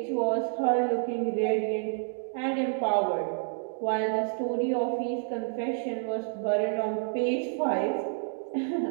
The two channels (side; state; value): left; silent; digital silence